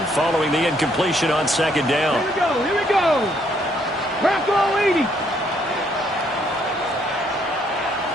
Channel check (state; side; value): normal; both; correlation 0.69